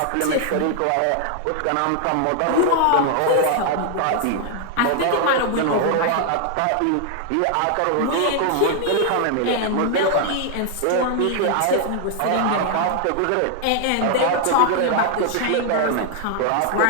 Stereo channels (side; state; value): both; different; correlation 0.00